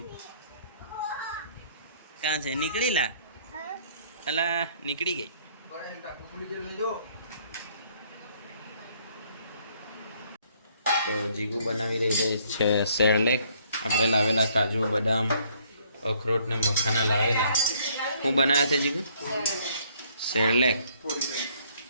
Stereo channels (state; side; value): inverted; both; correlation -0.64